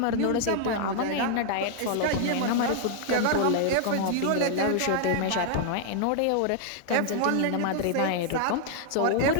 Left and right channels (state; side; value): different; both; correlation 0.00